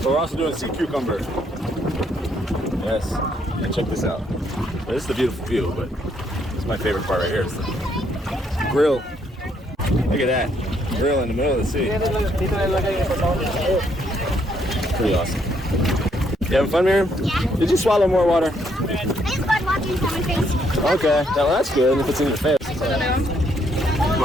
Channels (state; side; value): normal; both; correlation 0.72